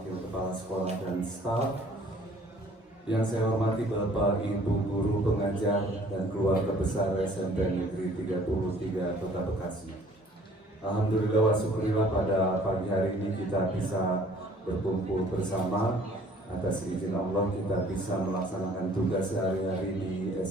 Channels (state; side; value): normal; both; correlation 0.55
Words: Kepala Sekolah dan Staf, yang saya hormati Bapak Ibu Guru Pengajar dan keluarga besar SMP Negeri 33 Kota Bekasi. Alhamdulillah wa syukurillah pada pagi hari ini kita bisa berkumpul bersama. Atas izin Allah kita bisa melaksanakan tugas sehari-hari di